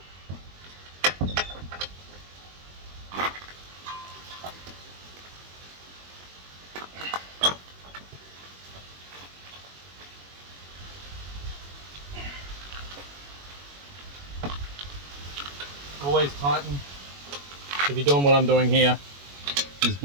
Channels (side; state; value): left; late; 21 ms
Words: Always tighten. If you're doing what I'm doing here, it's